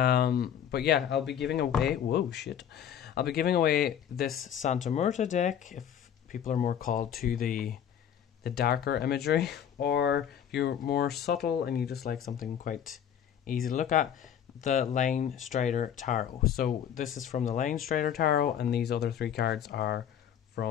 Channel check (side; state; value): right; quieter; 9.1 dB